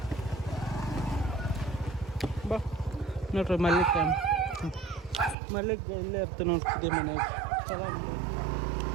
ಬಾ ನೋಡ್ರಿ ಮಲ್ಲಿಕ ಇಲ್ಲೇ ಇರ್ತೀನಿ ನೋಡ್ತಿದ್ದೆ ಮನೆಗೆ ಚಲೋ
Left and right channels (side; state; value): left; drops out; at 5.4 s